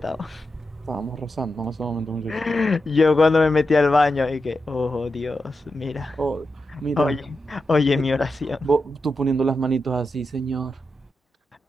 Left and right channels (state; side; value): normal; both; correlation 0.89